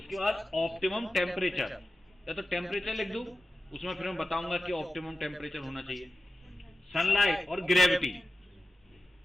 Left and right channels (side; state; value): both; normal; correlation 0.93